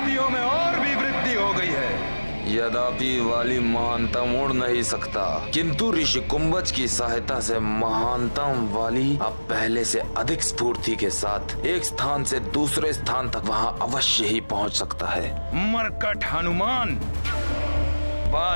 में और भी वृद्धि हो गई है। यद्यपि वाली महानतम उड़ नहीं सकता, किंतु ऋषि कुंभज की सहायता से महानतम वाली अब पहले से अधिक स्फूर्ति के साथ एक स्थान से दूसरे स्थान तक वहां अवश्य ही पहुंच सकता है। मरकट हनुमान,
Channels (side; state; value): both; inverted; correlation -1.00